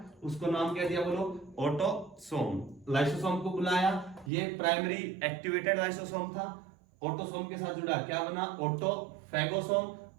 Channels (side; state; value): left; drops out; at 4.3 s